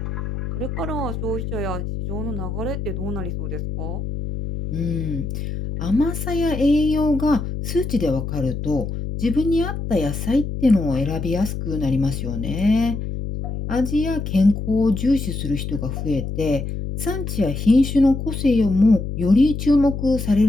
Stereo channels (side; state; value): left; noise; hum, 5 dB below the sound